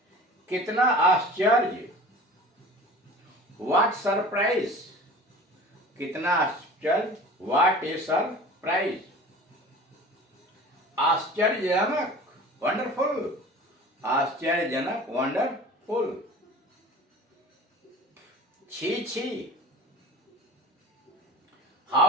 कितना आश्चर्य, व्हाट सरप्राइज, कितना आश्चर्य, व्हाट ए सरप्राइज। आश्चर्यजनक, वंडरफुल, आश्चर्यजनक, वंडरफुल। छी छी,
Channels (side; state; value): both; normal; correlation 0.40